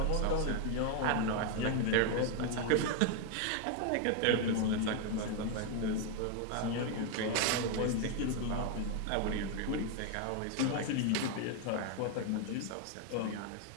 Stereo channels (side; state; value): both; different; correlation 0.01